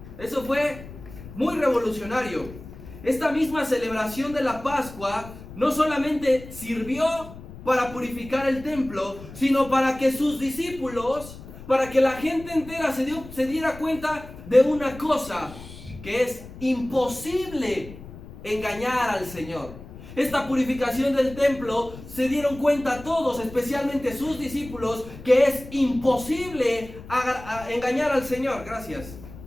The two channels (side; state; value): left; noise; rumble, 15 dB below the sound